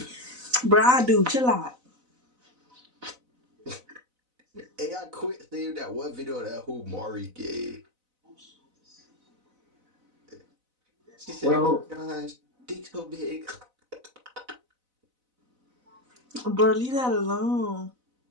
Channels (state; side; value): late; left; 4.0 ms